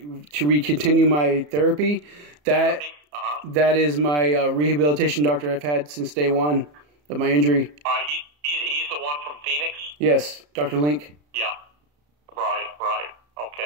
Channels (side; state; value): left; late; 34 ms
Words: continue my therapy, that is my rehabilitation doctor I've had since day one of my injury. He's the one from Phoenix? Yes, Dr. Link. Yeah. Right.